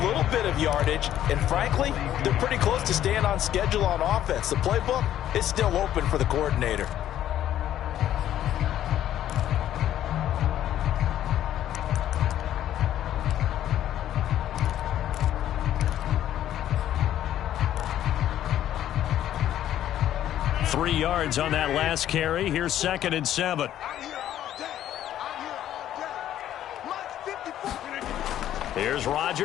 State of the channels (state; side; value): quieter; right; 11.8 dB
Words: little bit of yardage, and frankly, they're pretty close to staying on schedule on offense. The playbook is still open for the coordinator. Three yards on that last carry. Here's 2nd and 7. Here's